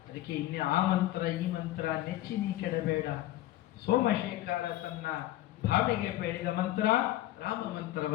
ಅದಕ್ಕೆ ಇನ್ನೇ ಆ ಮಂತ್ರ ಈ ಮಂತ್ರ ನೆಚ್ಚಿ ನೀ ಕೆಡಬೇಡ, ಸೋಮಶೇಖರ ತನ್ನ ಭಾವಿಗೆ ಬೇಡಿದ ಮಂತ್ರ ರಾಮ ಮಂತ್ರವ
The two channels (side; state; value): right; quieter; 14.9 dB